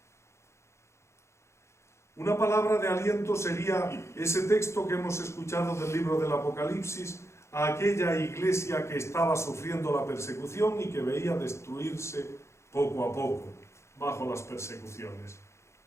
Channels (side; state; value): right; late; 0.13 ms